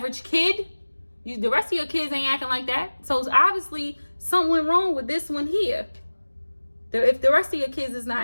kid, the rest of your kids ain't acting like that. So it's obviously something wrong with this one here. If the rest of your kids is not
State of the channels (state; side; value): inverted; both; correlation -1.00